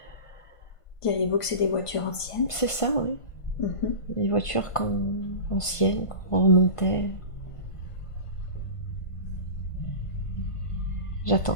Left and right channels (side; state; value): right; late; 1.5 ms